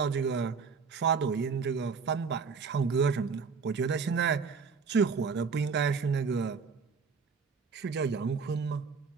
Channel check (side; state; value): left; quieter; 5.4 dB